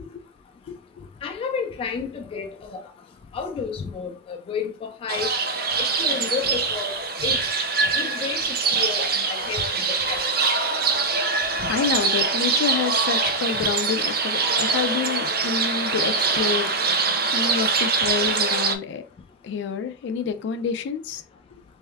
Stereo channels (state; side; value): normal; both; correlation -0.01